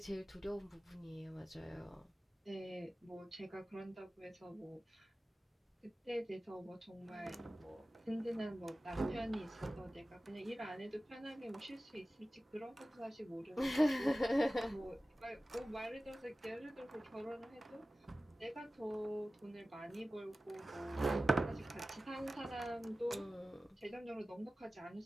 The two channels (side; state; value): both; normal; correlation 0.96